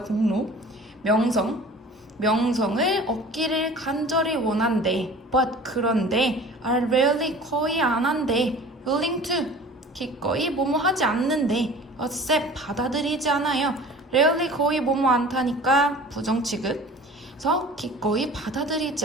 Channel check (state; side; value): normal; both; correlation 0.43